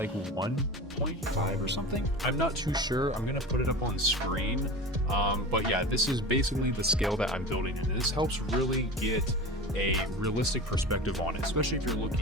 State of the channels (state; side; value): normal; both; correlation 0.32